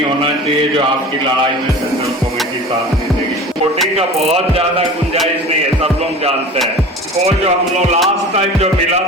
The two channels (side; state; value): both; normal; correlation 0.37